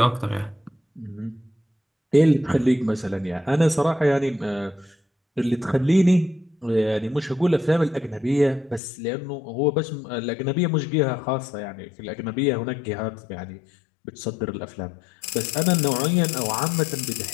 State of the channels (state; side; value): drops out; right; at 8.8 s